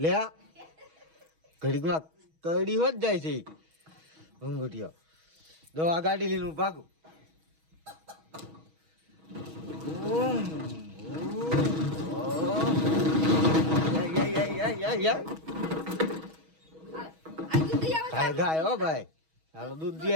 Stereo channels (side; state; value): left; late; 6.3 ms